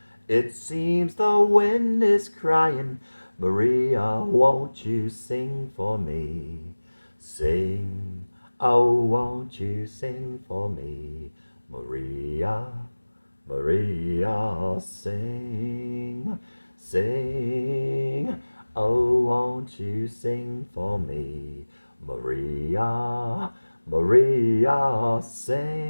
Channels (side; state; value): both; inverted; correlation -1.00